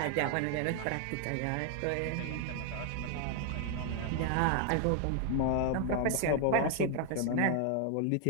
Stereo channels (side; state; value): both; different; correlation 0.00